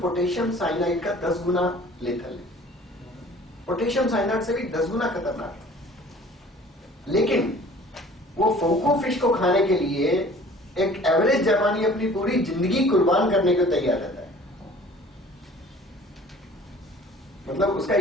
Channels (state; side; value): normal; both; correlation 0.49